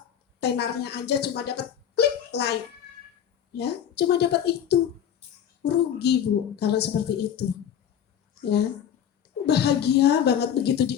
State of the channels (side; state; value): right; quieter; 9.1 dB